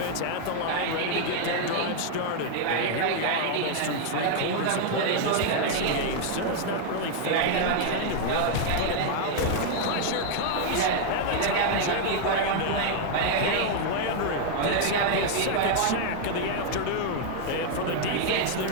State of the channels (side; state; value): both; different; correlation 0.00